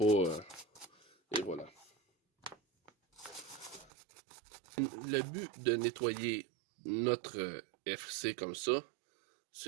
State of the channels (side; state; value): left; drops out; at 3.9 s